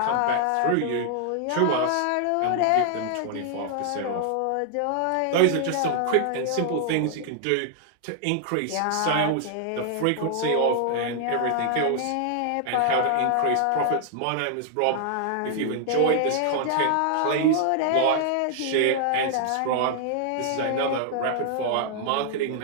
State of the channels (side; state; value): both; different; correlation 0.00